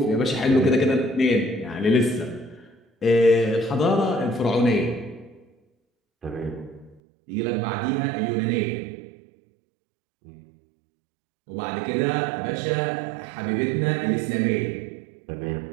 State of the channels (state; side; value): drops out; left; at 7.0 s